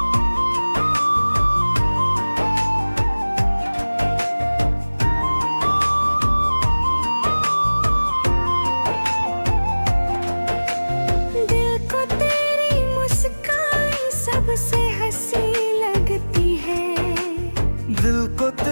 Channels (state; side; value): inverted; both; correlation -1.00